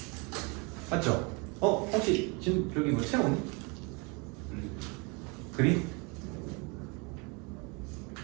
맞죠? 혹시 지금 저기 뭐 채우니? 그림?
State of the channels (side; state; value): left; quieter; 30.7 dB